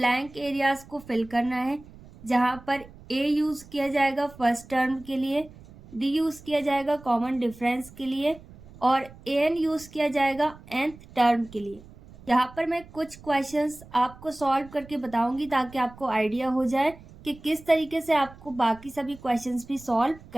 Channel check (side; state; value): right; noise; rumble, 21 dB below the sound